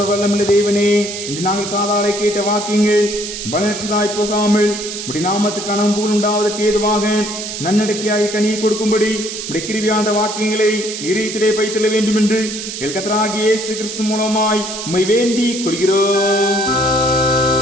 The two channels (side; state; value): right; noise; hiss, 7 dB below the sound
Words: வல்லமுள்ள தேவனே, இன்று நாங்கள் காதாலை கேட்ட வாக்கியங்கள் பலனற்றதாய் போகாமல் உடைய நாமத்துக்கு அனம்பூல் உண்டாவதற்கு ஏதுவாக நன்னடக்கையாக கனியை கொடுக்கும்படி உடைய கிருபியாந்த வாக்கியங்களை இதயத்திலே வைத்துள்ள வேண்டும் என்று எங்கள் கர்த்தராகிய இயேசு கிறிஸ்து மூலமாய் உம்மை வேண்டிக் கொள்கிறோம்.